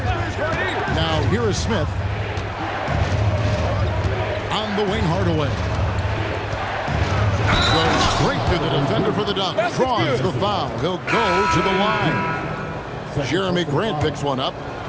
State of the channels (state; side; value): identical; both; correlation 1.00